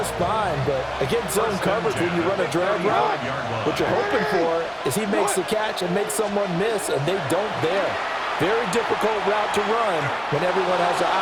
fine, but against zone coverage when you run a drag route, what you're hoping for is he makes the catch and makes someone miss, and they don't there. Very difficult route to run when everyone has their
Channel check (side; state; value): both; identical; correlation 1.00